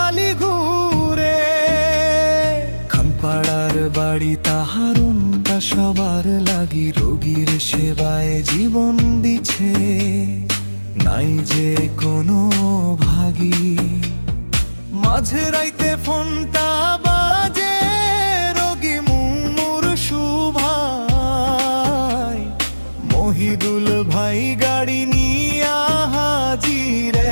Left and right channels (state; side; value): inverted; both; correlation -1.00